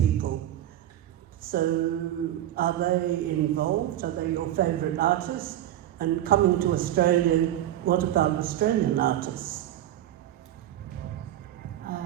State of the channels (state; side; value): quieter; left; 12.8 dB